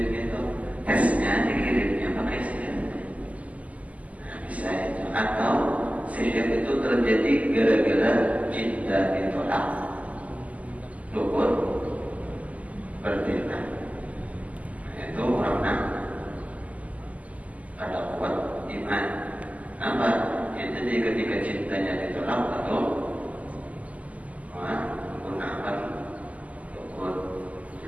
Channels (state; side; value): late; left; 0.072 ms